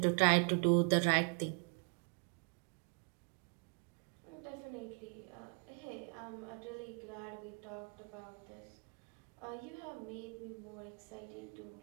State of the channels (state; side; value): quieter; left; 38.1 dB